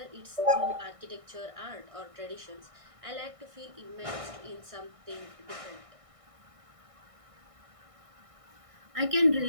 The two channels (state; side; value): late; left; 1.6 ms